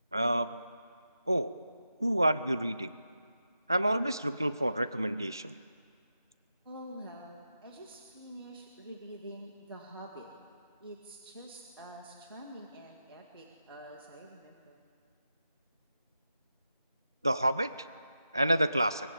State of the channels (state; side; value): inverted; both; correlation -0.90